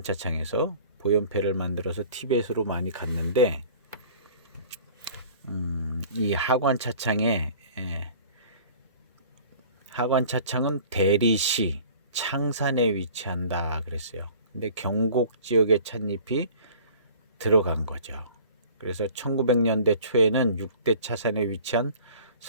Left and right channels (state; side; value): inverted; both; correlation -0.47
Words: 보연패를 만들어서 티베트로 많이 갔는데, 이 하관차창은 대리시 창산에 위치한다 그랬어요. 근데 경곡 지역의 찻잎이 들어간 거죠. 그래서 1900년대 초에는 6대 차산에 위치한